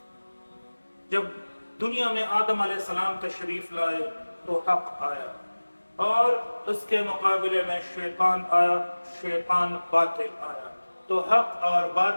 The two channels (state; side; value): inverted; both; correlation -1.00